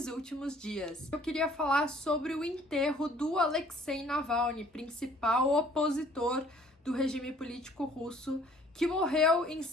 últimos dias. Eu queria falar sobre o enterro do Alexei Navalny, principal opositor do regime político russo, que morreu em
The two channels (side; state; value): both; normal; correlation 0.57